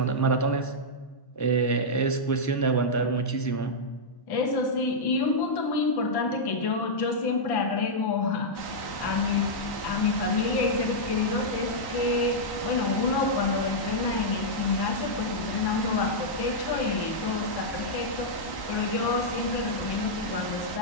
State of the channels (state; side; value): late; right; 1.1 ms